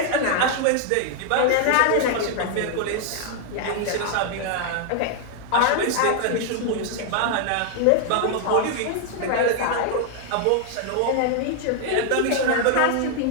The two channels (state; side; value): different; both; correlation 0.00